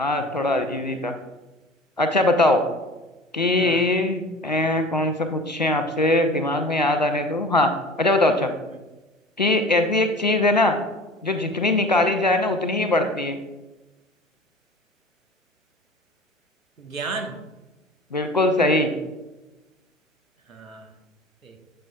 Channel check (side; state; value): both; normal; correlation 0.42